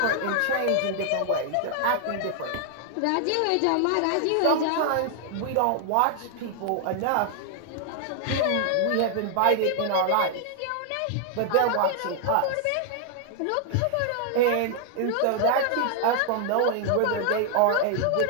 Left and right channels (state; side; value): different; both; correlation 0.00